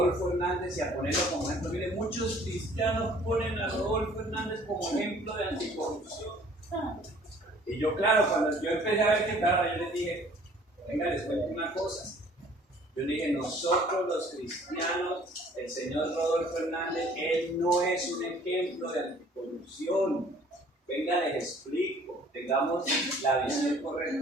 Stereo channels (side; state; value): both; normal; correlation 0.55